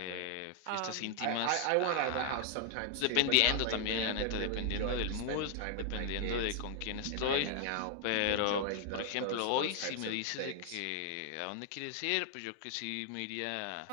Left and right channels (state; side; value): different; both; correlation 0.00